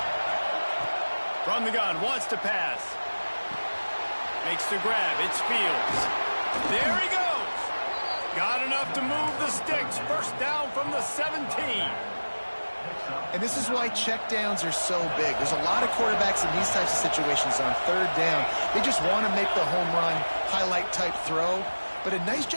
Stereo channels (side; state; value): both; inverted; correlation -1.00